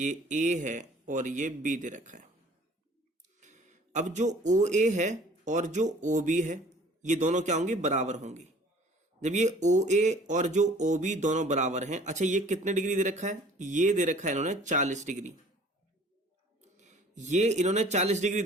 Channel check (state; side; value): normal; both; correlation 0.51